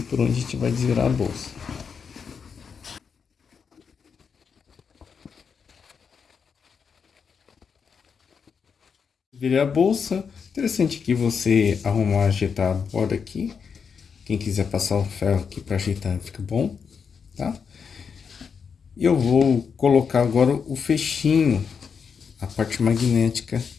por onde a gente vai desvirar a bolsa. Virei a bolsa. Interessante que você arrumar, ajeitar a borda aqui. Quem quiser passar o ferro aqui para ajeitar, fica bom, tá? E eu vou colocar agora o fechinho, a parte magnética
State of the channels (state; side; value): quieter; right; 6.2 dB